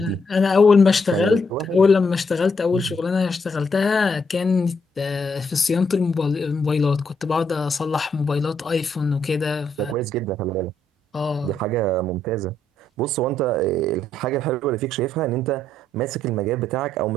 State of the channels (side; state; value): both; normal; correlation 0.75